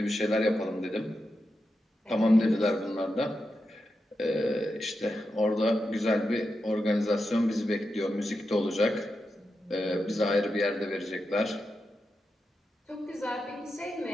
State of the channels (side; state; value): both; normal; correlation 0.88